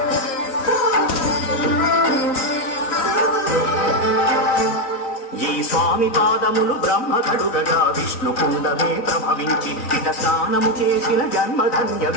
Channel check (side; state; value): right; late; 3.9 ms